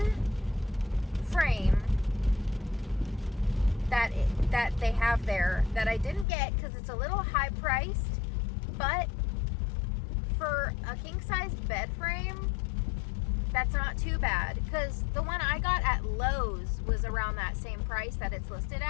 frame that they have there that I didn't get because it's a little high priced, but for a king size bed frame, that's not too bad, because the one I got at Lowe's was around that same price that it's listed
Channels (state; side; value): drops out; right; at 6.2 s